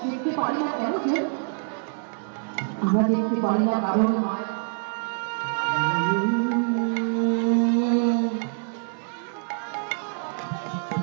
দেখতে পারি না কেন কেউ, আমরা দেখতে পারি না কারণ মায়া।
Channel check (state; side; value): silent; left; digital silence